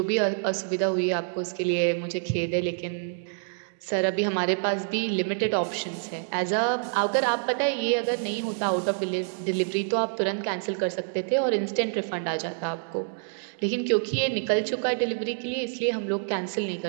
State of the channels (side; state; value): left; silent; digital silence